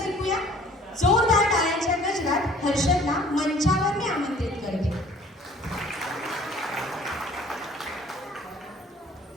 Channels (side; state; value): both; normal; correlation 0.53